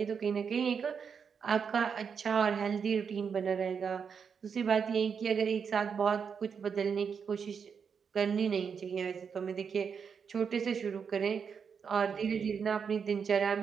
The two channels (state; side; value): quieter; left; 6.5 dB